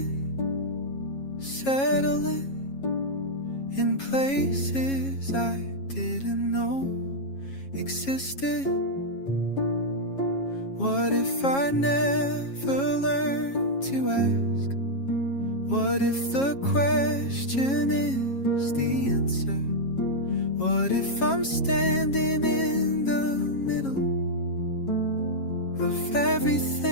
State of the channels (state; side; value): late; right; 7.3 ms